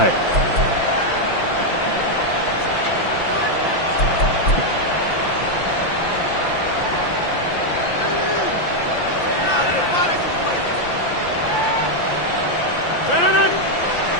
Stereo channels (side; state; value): right; late; 5.8 ms